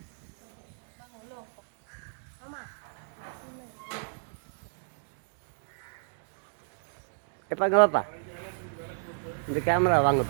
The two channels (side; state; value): left; silent; digital silence